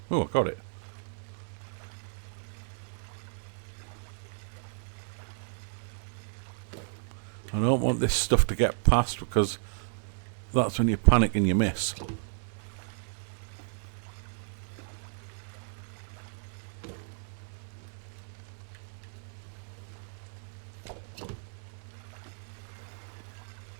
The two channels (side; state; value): left; silent; digital silence